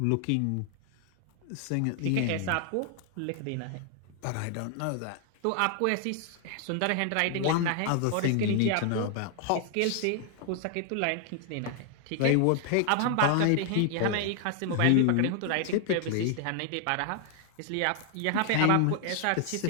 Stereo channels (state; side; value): different; both; correlation 0.00